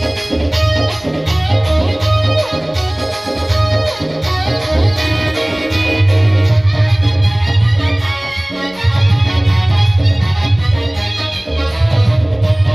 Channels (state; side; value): noise; left; rumble, 30 dB below the sound